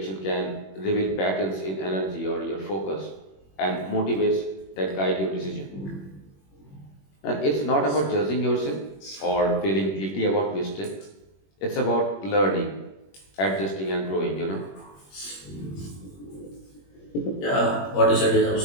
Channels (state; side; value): late; right; 21 ms